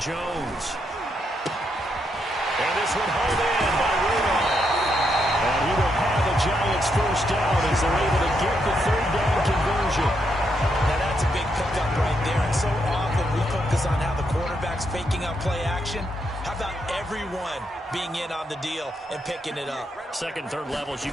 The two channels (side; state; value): both; normal; correlation 0.79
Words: And this one hauled in by Rudolph. And he will have the Giants first down as they're able to get the 3rd down conversion. Now, that's a big pickup right there. And so often we focus on how the quarterback's faking out play action. How about everyone being in on the deal and picking it up? Second, third levels, you